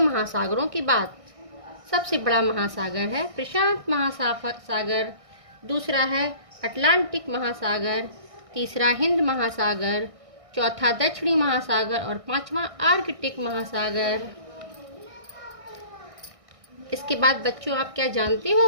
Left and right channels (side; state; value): left; late; 1.6 ms